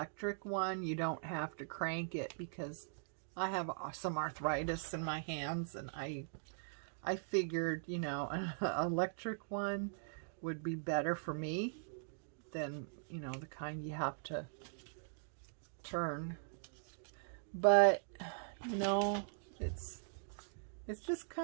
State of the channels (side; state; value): left; silent; digital silence